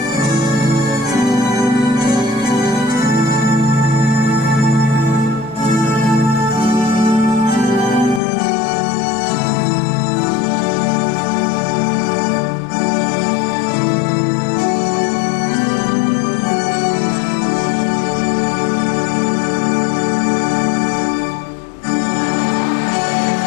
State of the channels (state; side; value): drops out; right; at 8.2 s